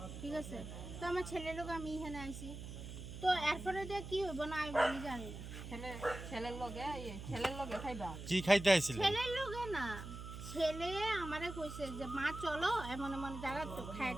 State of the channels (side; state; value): right; noise; hum, 9 dB below the sound